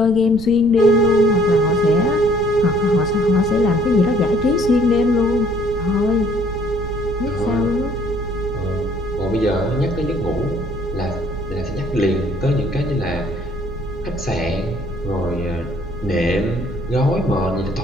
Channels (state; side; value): noise; right; rumble, 13 dB below the sound